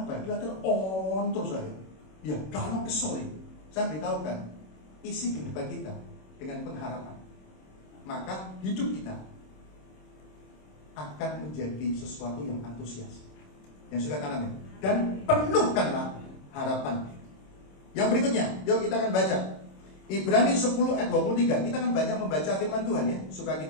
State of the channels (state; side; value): late; right; 26 ms